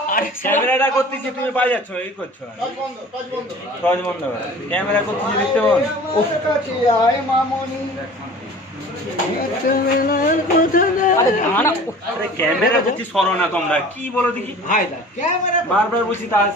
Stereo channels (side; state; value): both; normal; correlation 0.43